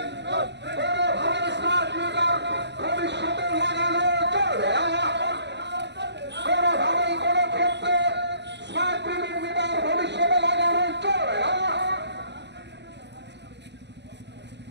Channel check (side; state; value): left; late; 0.50 ms